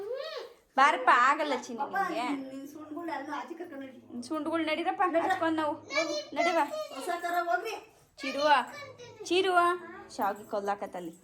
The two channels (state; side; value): identical; both; correlation 1.00